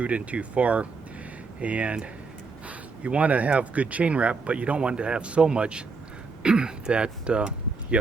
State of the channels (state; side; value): quieter; left; 4.5 dB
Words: in too far, and you want to have good chain wrap, but you don't want to have so much that you